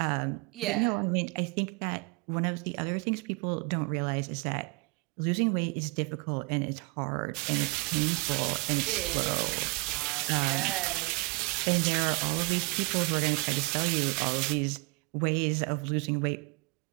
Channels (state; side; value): quieter; left; 27.2 dB